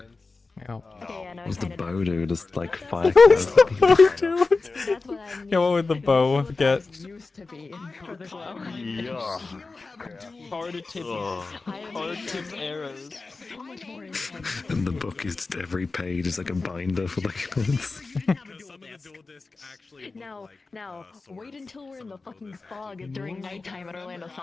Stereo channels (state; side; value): quieter; right; 3.8 dB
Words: Yeah. What's the bow do? Just like 5 What's the bow do? Yeah, what would the bow get? Used to be for the glow. Yeah. Hard tipped arrows. So much more intense. And the book is just every page is like a binder for like months. Now, wait until we're in the fucking fog during nighttime at Orlando